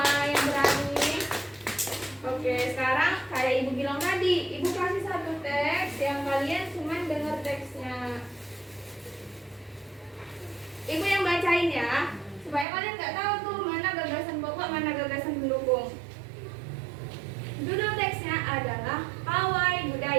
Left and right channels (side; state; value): left; drops out; at 12.7 s